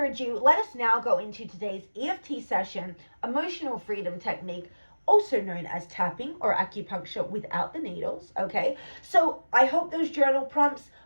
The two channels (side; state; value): both; inverted; correlation -1.00